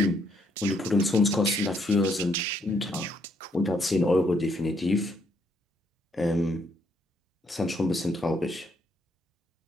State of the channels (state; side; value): normal; both; correlation 0.72